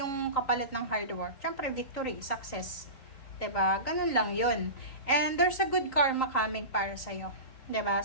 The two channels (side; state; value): right; late; 3.8 ms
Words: kapalit ng hard work? Syempre, victory, success. 'Di ba? Ganun lang 'yun. And there's a good karma coming para sa iyo. 'Di ba?